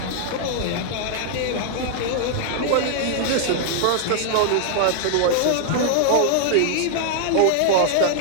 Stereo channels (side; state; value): both; different; correlation -0.01